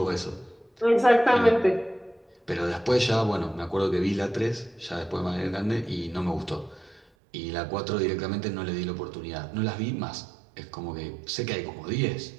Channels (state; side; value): drops out; left; at 7.0 s